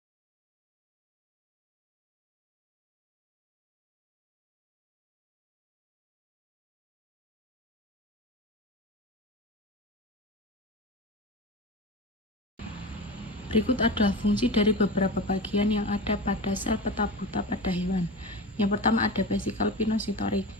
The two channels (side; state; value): both; normal; correlation 0.28